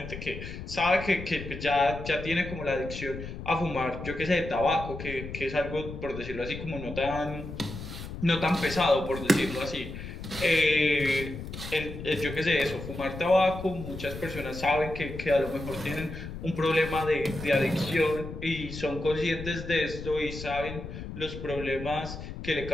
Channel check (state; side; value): noise; left; rumble, 9 dB below the sound